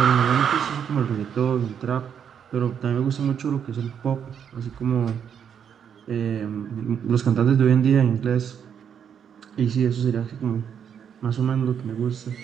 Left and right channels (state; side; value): quieter; left; 8.0 dB